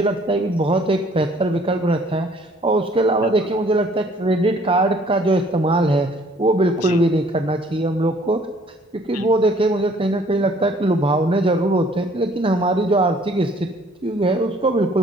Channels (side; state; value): both; normal; correlation 0.58